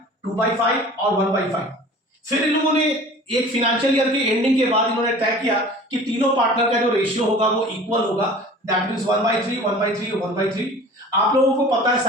और 1/5। फिर इन लोगों ने एक फाइनेंशियल ईयर के एंडिंग के बाद इन्होंने तय किया कि तीनों पार्टनर का जो रेशियो होगा वो इक्वल होगा, दैट मींस 1/3 1/3 1/3। आप लोगों को पता है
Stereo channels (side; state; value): both; normal; correlation 0.43